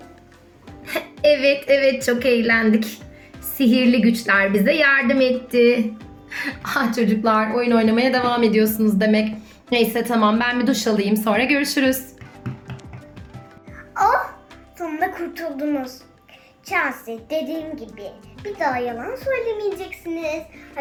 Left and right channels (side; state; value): both; identical; correlation 1.00